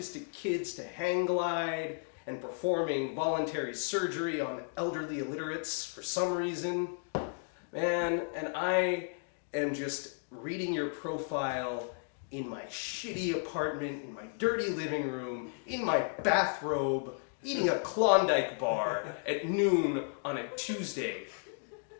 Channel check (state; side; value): silent; right; 55 dB below the other